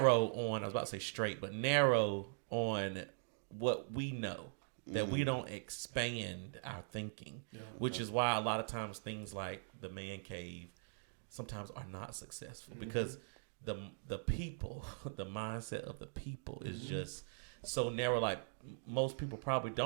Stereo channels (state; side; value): silent; left; digital silence